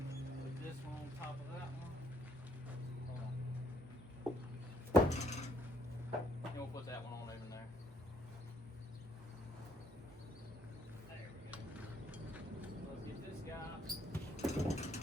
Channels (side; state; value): both; normal; correlation 0.69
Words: Put this one on top of that one. And we'll put that one on over there. There we go. Let's get this guy